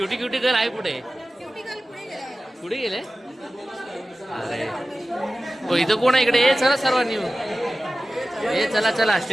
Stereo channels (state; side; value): normal; both; correlation 0.96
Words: क्युटी गर्ल आहे कुठे? कुठे गेले? अरे हो, इथं कोण आहे इकडे? चला सर्वांनी. चला चला